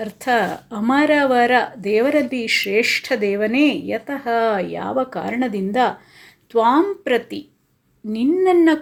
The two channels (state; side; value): identical; both; correlation 1.00